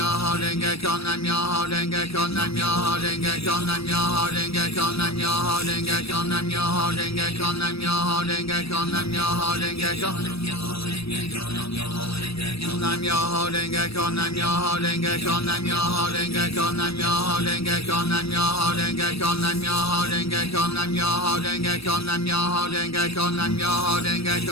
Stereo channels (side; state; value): right; late; 0.77 ms